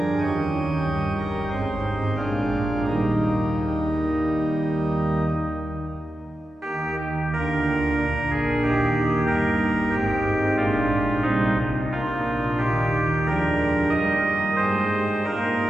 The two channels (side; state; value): both; normal; correlation 0.91